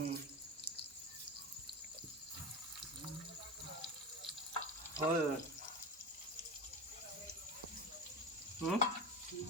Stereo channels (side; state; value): both; normal; correlation 0.23